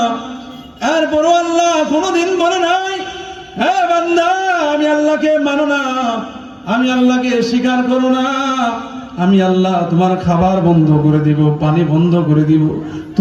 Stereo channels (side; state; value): both; identical; correlation 1.00